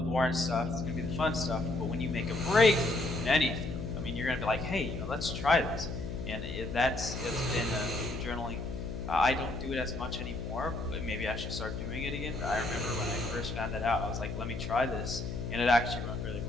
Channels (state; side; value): noise; left; hum, 6 dB below the sound